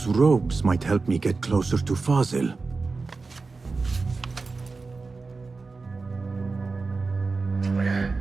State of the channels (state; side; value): quieter; left; 4.0 dB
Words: robes might help me get closer to Fazil.